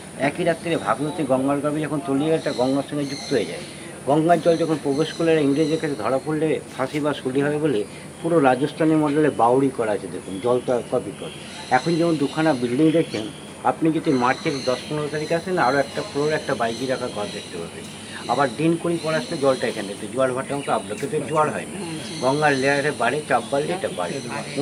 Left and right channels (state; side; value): identical; both; correlation 1.00